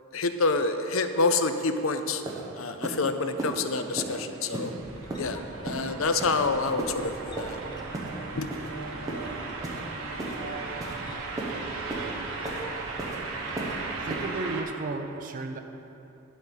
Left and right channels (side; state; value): both; normal; correlation -0.05